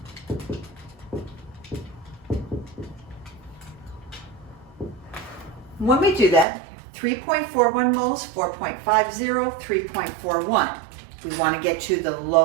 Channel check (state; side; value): drops out; left; at 6.5 s